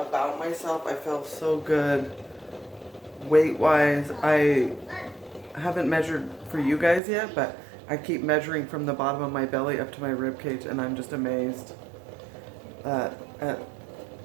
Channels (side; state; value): left; drops out; at 7.0 s